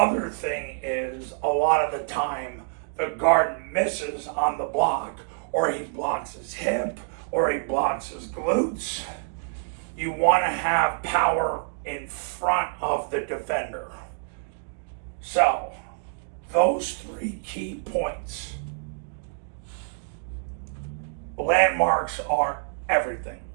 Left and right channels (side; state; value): left; silent; digital silence